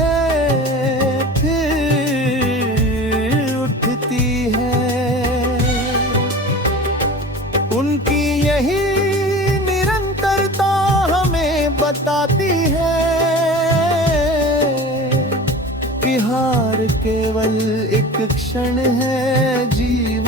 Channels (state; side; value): normal; both; correlation 0.36